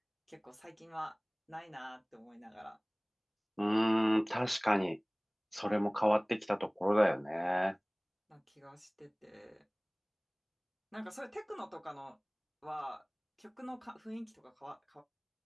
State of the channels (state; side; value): identical; both; correlation 1.00